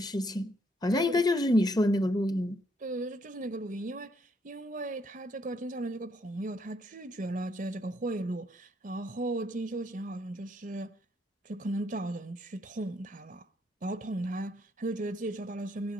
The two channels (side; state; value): both; normal; correlation 0.72